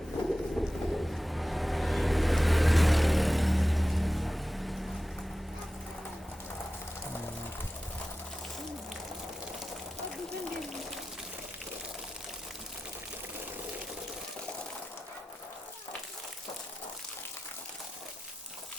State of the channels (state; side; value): normal; both; correlation 0.94